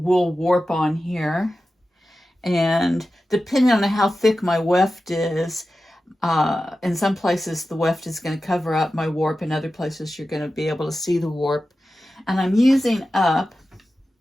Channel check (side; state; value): both; normal; correlation 0.93